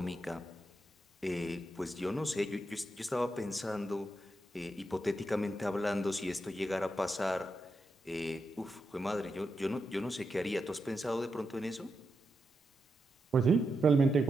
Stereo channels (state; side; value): normal; both; correlation 0.85